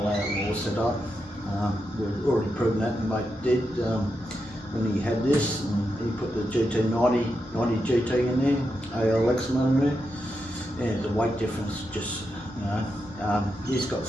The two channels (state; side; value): normal; both; correlation 0.86